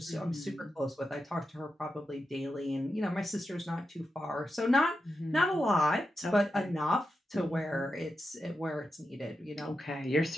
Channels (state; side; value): normal; both; correlation 0.89